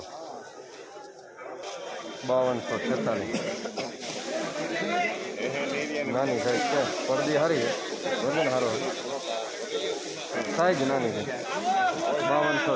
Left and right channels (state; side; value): identical; both; correlation 1.00